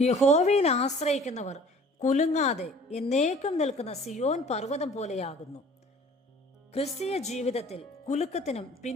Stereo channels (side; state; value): both; normal; correlation 0.50